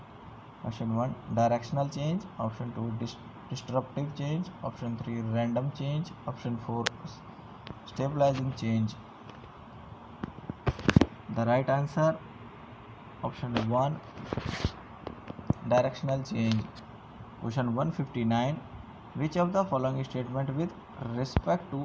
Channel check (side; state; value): both; identical; correlation 1.00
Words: option 1 directional change, option 2 disruptive change, option 3 random change, option 4 stabilizing change. The right answer option 1 directional change. Question 159. Which of the following statement with respect